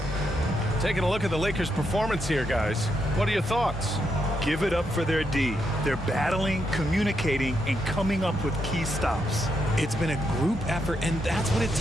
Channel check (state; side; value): normal; both; correlation 0.80